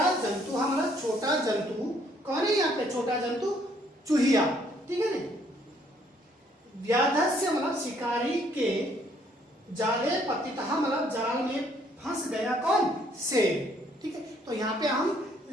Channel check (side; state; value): both; normal; correlation 0.65